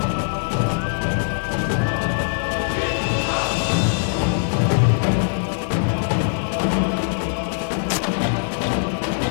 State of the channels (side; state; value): right; silent; digital silence